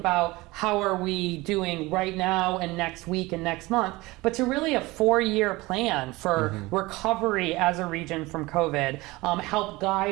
how are we doing right now and next week and next month, but to really a 4-year plan for recovery as a region from COVID, help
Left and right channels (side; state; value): left; quieter; 21.3 dB